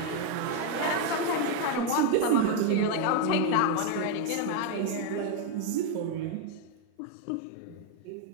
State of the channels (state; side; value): different; both; correlation 0.01